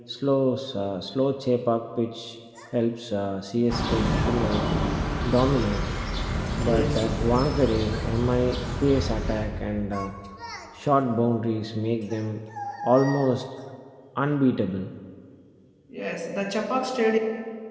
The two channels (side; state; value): both; identical; correlation 1.00